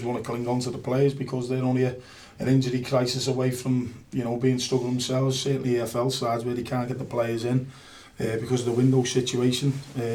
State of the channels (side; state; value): both; identical; correlation 1.00